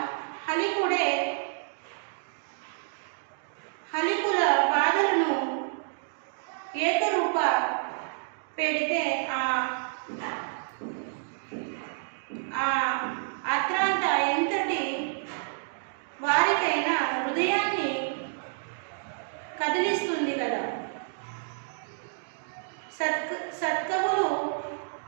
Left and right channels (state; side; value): silent; left; digital silence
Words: హలికుల బాధలను ఏకరూప పెడితే అత్రాంత ఎంతటి వారికైనా హృదయాన్ని కదిలిస్తుంది కదా. సత్కవులు